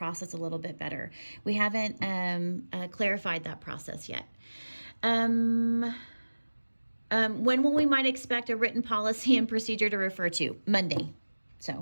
a little bit better. We haven't clarified that process yet. When will we might expect a written policy and procedure to refer to? Monday.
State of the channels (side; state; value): both; inverted; correlation -1.00